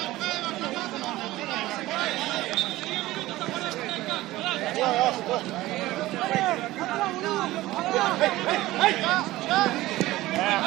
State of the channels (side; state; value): left; quieter; 17.3 dB